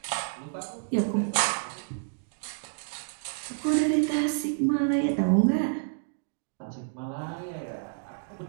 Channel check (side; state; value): left; silent; digital silence